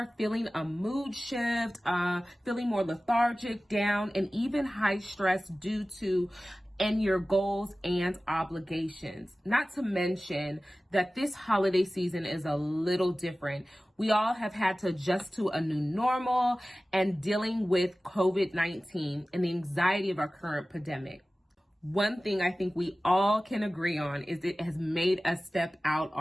feeling a mood shift, feeling more lethargic, down, and even high stress due to your goals and obligations. Not to mention that this holiday season is a little different. We all have had to adjust to a new normal and dealing with COVID-19 and the anxiety of our current pandemic. One thing I think we all can agree on is it has made us step out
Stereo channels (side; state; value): both; normal; correlation 0.96